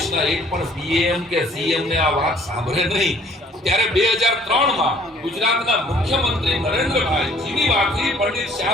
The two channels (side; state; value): both; normal; correlation 0.57